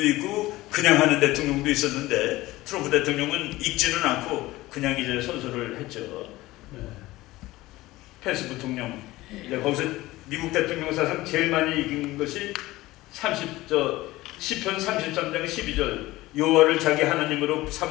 있고 그냥 하는 대통령도 있었는데 트럼프 대통령은 읽지는 않고 그냥 이제 선서를 했죠. 펜스 부통령 이제 거기서 미국 대통령 사상 제일 많이 읽은 것이 시편 33장 12절 여호와를 자기 하나님으로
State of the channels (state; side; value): quieter; right; 18.2 dB